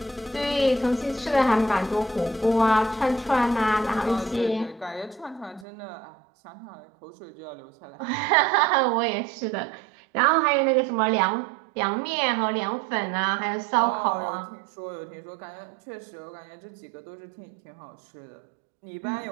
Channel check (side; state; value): left; drops out; at 5.7 s